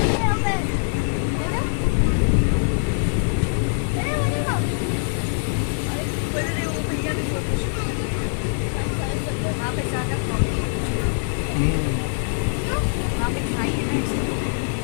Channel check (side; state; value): right; silent; digital silence